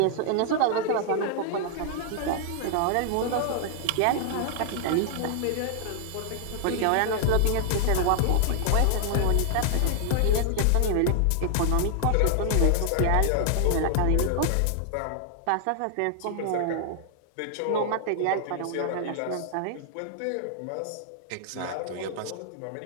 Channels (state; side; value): different; both; correlation 0.00